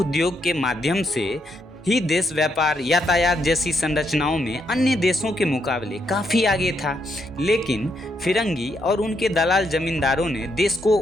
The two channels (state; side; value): normal; both; correlation 0.78